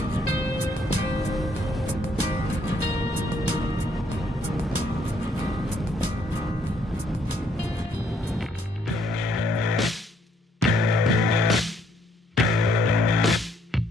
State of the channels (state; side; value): normal; both; correlation 0.69